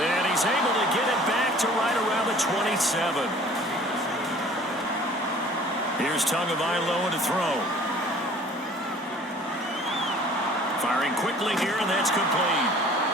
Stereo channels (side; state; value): both; normal; correlation 0.50